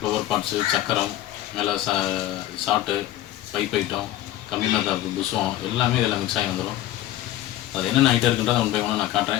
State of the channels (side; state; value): right; quieter; 14.2 dB